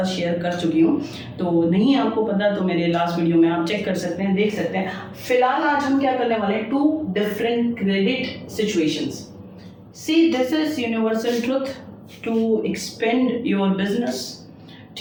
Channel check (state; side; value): identical; both; correlation 1.00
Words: शेयर कर चुकी हूँ। तो नहीं आपको पता तो मेरे लास्ट वीडियो में आप चेक कर सकते हैं, देख सकते हैं। फिलहाल आज हम क्या करने वाले हैं, 2 different credit situations. See this is universal truth to expand your business.